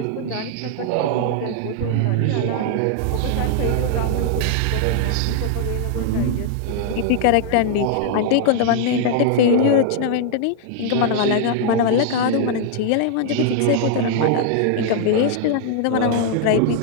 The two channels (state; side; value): different; both; correlation -0.01